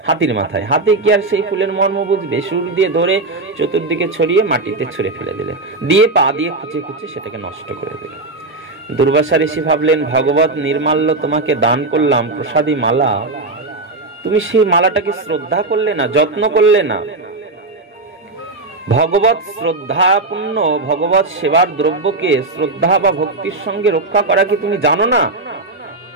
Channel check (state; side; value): quieter; left; 3.2 dB